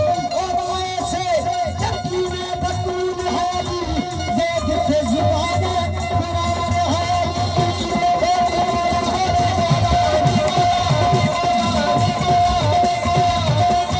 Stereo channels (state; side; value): identical; both; correlation 1.00